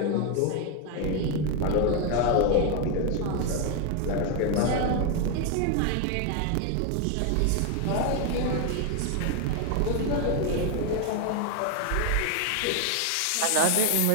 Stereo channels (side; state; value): both; different; correlation 0.01